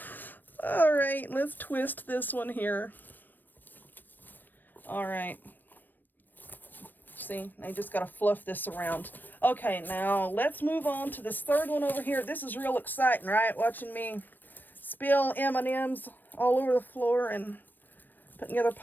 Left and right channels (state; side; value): late; right; 0.091 ms